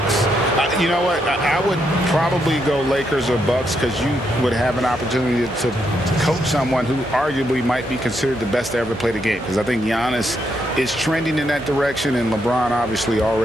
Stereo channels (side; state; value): both; normal; correlation 0.78